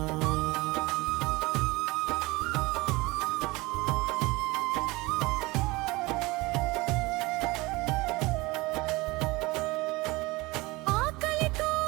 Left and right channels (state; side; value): quieter; left; 22.4 dB